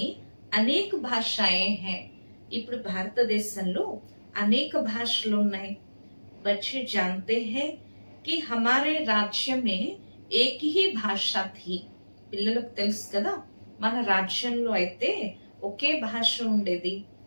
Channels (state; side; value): inverted; both; correlation -1.00